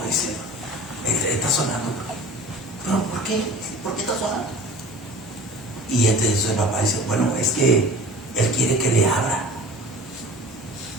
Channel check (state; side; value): normal; both; correlation 0.41